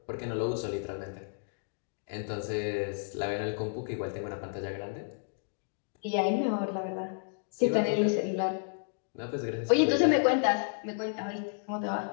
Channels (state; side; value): silent; right; digital silence